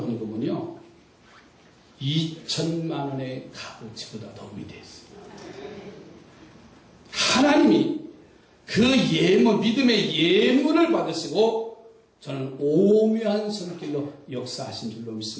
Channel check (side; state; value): both; identical; correlation 1.00